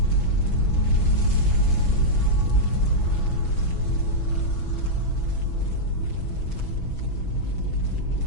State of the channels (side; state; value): right; late; 6.1 ms